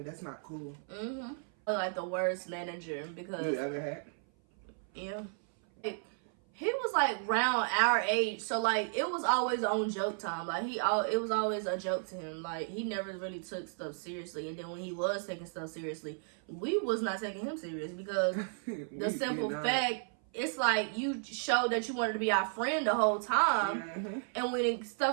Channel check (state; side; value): silent; left; 55 dB below the other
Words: That's not cool. The worst manager because you ever had? Yeah. He was around our age, so it was always on joke time. It was always a joke to him. He never really took stuff seriously, and then when he was taking stuff seriously, we was not taking him serious because the simple fact, it's you showed that you wanted to be our friend the whole time, and when